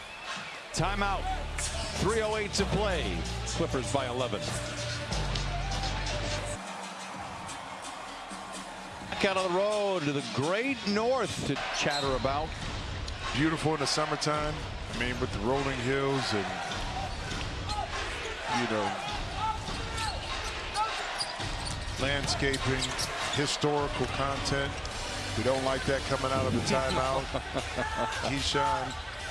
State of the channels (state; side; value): identical; both; correlation 1.00